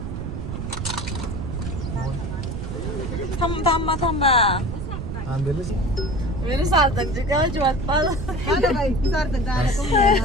थांबा थांबा. आंबेलच मेरे सार्थक जी गावची वाट पाहत.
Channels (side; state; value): right; noise; rumble, 5 dB below the sound